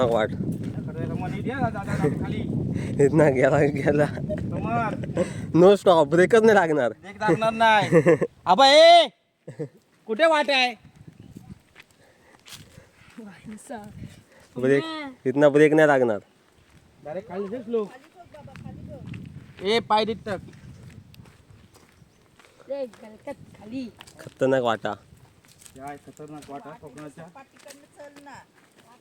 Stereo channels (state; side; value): identical; both; correlation 1.00